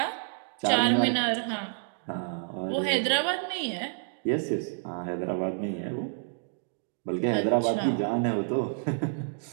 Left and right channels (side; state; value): left; silent; digital silence